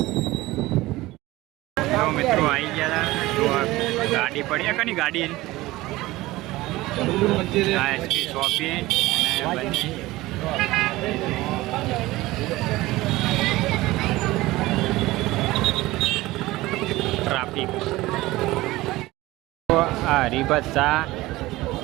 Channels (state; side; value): quieter; left; 18.7 dB